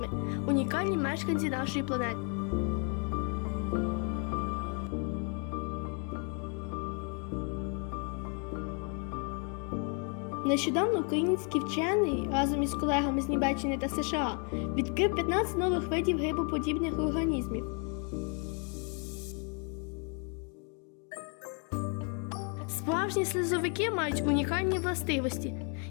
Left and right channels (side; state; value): right; quieter; 38.8 dB